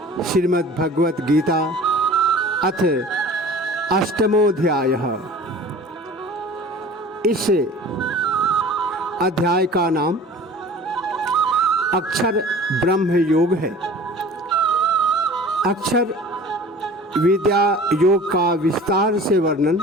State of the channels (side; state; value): both; normal; correlation 0.43